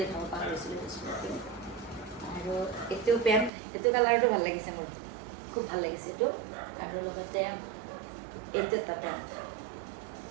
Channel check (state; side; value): drops out; left; at 3.5 s